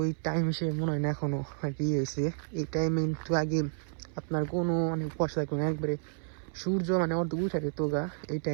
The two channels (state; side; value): silent; left; 57 dB below the other